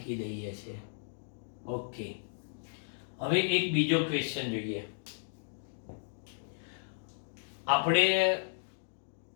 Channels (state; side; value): silent; right; digital silence